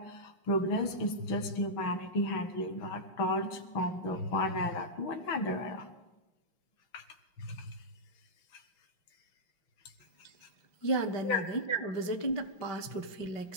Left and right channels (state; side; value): late; right; 6.2 ms